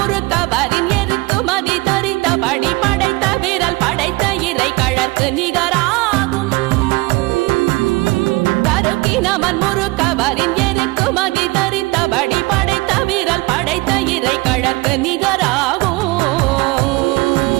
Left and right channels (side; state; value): left; quieter; 23.7 dB